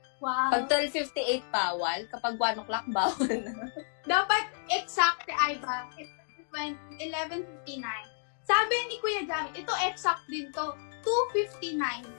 Wow. Pag 12:58 bawal, kapag 1 o'clock bawal na. Dapat exact ay ba? 11:59. Sabi ni Kuya Jamie, ito exact din to. 2:59.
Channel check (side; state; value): right; silent; digital silence